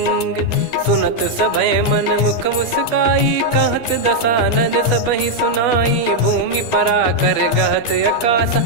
सुनत सभय मन मुख मुस्काई कहत दसानन सबहि सुनाई। भूमि परा कर गहत आकाशा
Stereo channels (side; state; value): right; late; 13 ms